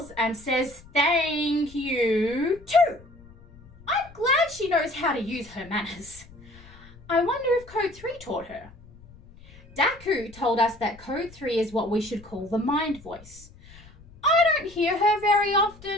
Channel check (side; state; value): left; noise; rumble, 22 dB below the sound